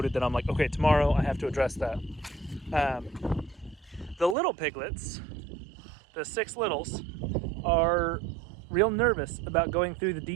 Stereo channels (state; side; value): drops out; left; at 4.4 s